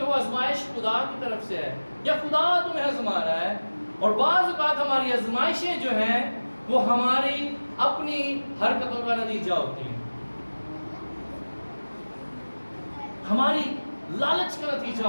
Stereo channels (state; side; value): inverted; both; correlation -1.00